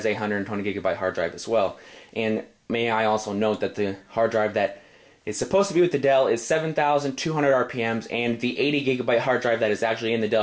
a 120 gigabyte hard drive as well. And may I also note that the hard drive that is supposed to be with the Dell is 7,200 RPMs, and the 80 gigabyte hard drive that is actually in the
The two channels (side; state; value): both; identical; correlation 1.00